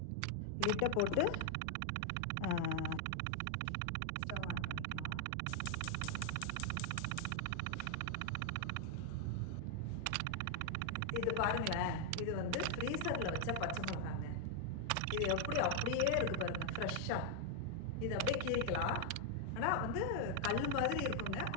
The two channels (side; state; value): both; different; correlation 0.00